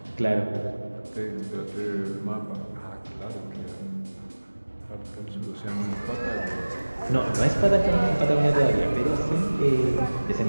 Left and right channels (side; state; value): both; inverted; correlation -1.00